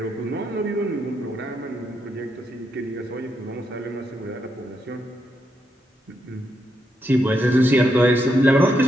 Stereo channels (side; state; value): both; normal; correlation 0.80